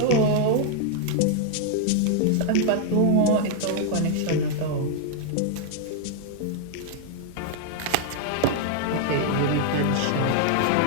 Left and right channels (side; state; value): both; different; correlation 0.00